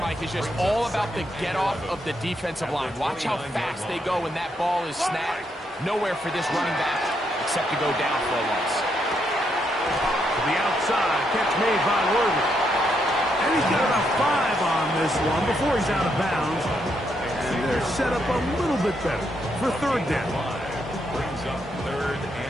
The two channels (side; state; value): both; normal; correlation 0.78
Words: is just all about the get-off of the defensive line. Watch how fast they go when that ball is snapped. Nowhere for this running back except to go down for a loss. To the outside. Catch made by Worthy. And he's got about 5 on this one before he's out of bounds. And they're set up a little bit better for third down. Brings up third